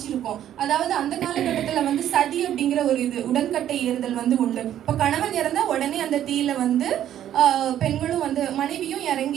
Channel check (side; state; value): left; quieter; 11.2 dB